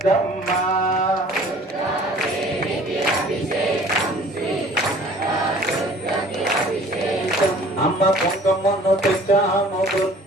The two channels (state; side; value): normal; both; correlation 0.50